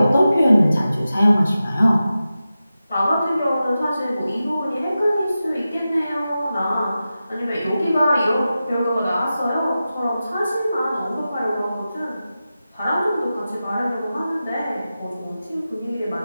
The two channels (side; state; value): both; inverted; correlation -0.93